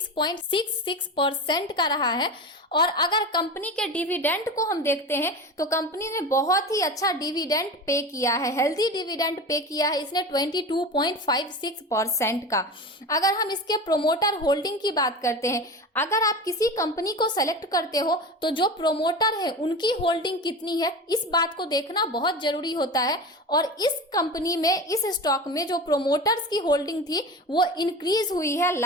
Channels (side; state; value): both; normal; correlation 0.29